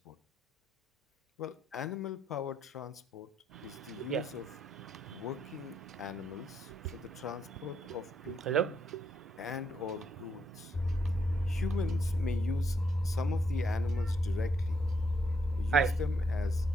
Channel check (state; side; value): normal; both; correlation 0.75